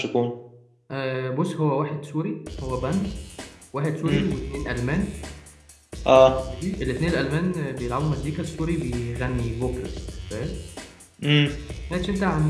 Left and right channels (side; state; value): both; identical; correlation 1.00